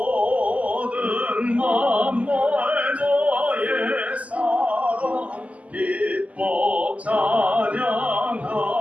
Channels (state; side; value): late; left; 0.070 ms